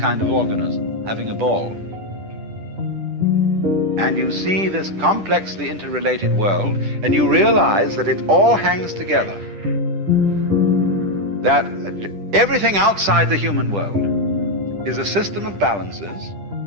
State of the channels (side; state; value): left; late; 10 ms